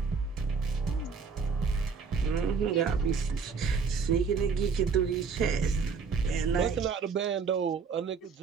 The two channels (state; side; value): quieter; left; 5.5 dB